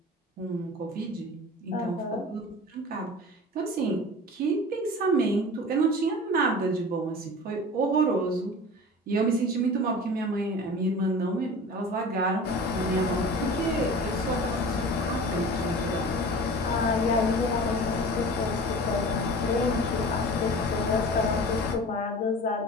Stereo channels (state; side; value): normal; both; correlation 0.37